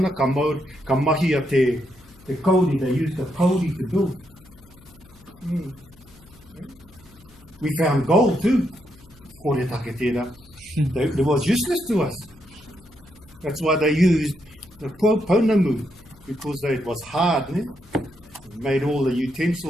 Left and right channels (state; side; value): noise; left; hum, 25 dB below the sound